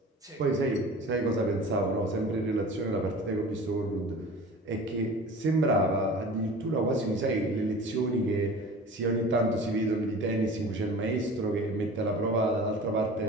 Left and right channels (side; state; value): both; normal; correlation 0.40